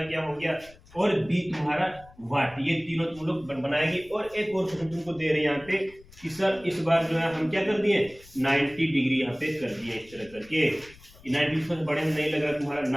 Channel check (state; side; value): noise; left; rumble, 24 dB below the sound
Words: क्या हो गया, और B तुम्हारा वाट, ये तीनों तुम लोग बनाएगी। और एक और क्वेश्चन तुमको दे रहे हैं यहाँ पे कि सर इस बार जो है हम क्या कर दिए, 90 डिग्री यहाँ पे कर दिए इस तरह करके। 90 से बड़े में नहीं लगा तुम्हारा,